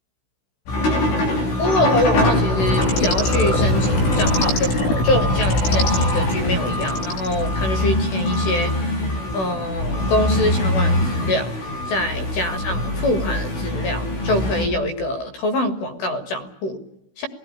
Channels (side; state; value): right; late; 16 ms